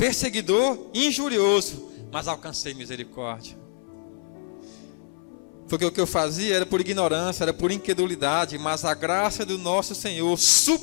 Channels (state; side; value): silent; right; 61 dB below the other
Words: injurioso, mas alcancei misericórdia. Porque o que eu fazia era por ignorância, era por incredulidade, mas a graça do nosso Senhor